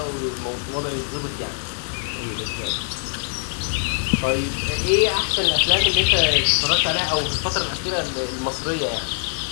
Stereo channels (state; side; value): silent; right; 64 dB below the other